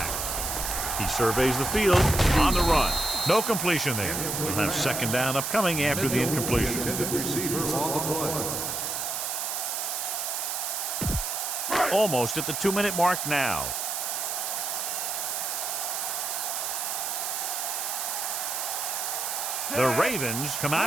He surveys the field on the run. No completion there. We'll have second down upcoming after the incompletion. Almost at the 2-minute mark now. The Ravens come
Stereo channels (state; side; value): noise; right; hiss, 2 dB below the sound